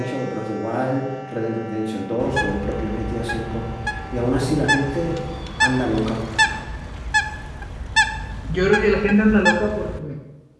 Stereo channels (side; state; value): both; identical; correlation 1.00